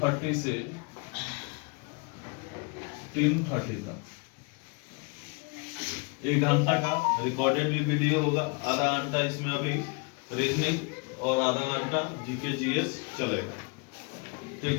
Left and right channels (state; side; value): quieter; right; 33.1 dB